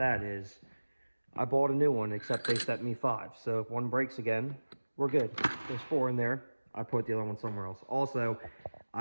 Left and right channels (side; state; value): both; inverted; correlation -1.00